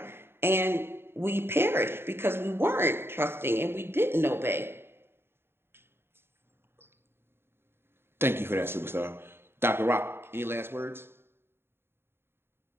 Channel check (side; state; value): left; late; 0.11 ms